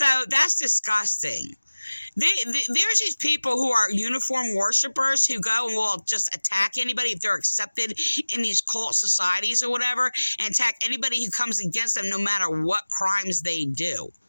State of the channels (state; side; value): inverted; both; correlation -1.00